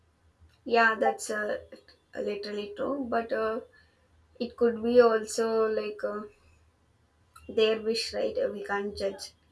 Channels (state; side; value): identical; both; correlation 1.00